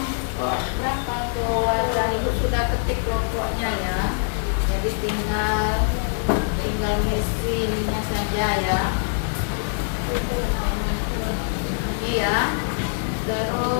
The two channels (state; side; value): silent; right; 59 dB below the other